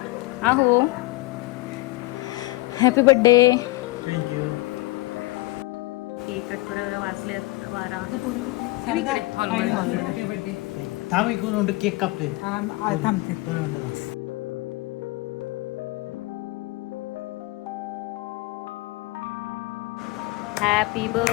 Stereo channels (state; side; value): quieter; right; 21.6 dB